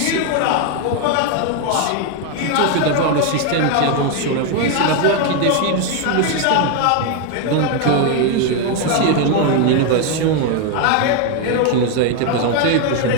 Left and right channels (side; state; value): both; different; correlation 0.01